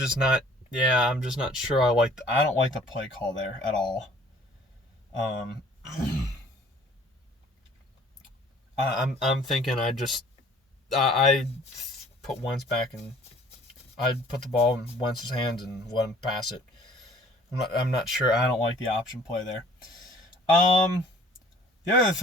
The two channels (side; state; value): both; normal; correlation 0.53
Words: not sure I don't like the play call there at all. I'm thinking I put Wentz back in I'd put the ball in Wentz's hands and let him pass it. I'm not sure. I don't like the option play there. The other